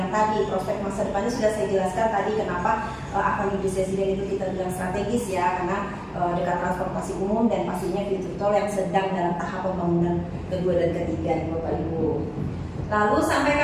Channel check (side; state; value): both; identical; correlation 1.00